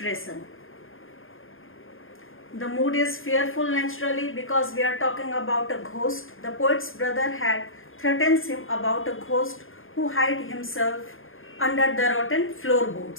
The mood is fearful naturally because we are talking about a ghost. The poet's brother had threatened him about a ghost who hid himself under the rotten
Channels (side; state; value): right; late; 0.59 ms